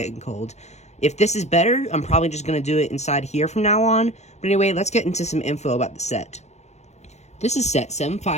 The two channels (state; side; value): late; right; 0.33 ms